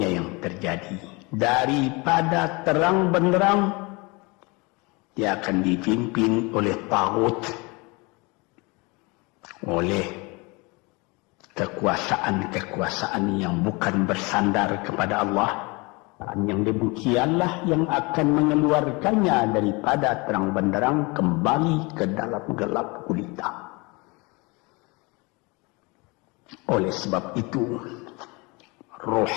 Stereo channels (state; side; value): quieter; right; 26.9 dB